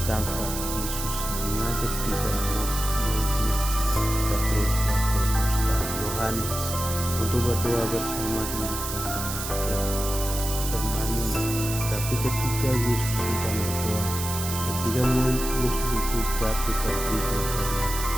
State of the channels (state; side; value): noise; right; hiss, 6 dB below the sound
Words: Yesus mengajak tiga murid-muridnya, Petrus, Yakobus, dan Yohanes, untuk berdoa bersama di taman Getsemani. Tapi ketika Yesus sedang berdoa, ketiga murid Yesus itu jatuh tertidur karena